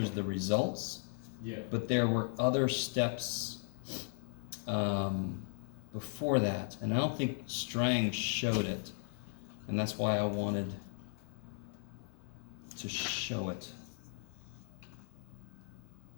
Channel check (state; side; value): silent; right; 53 dB below the other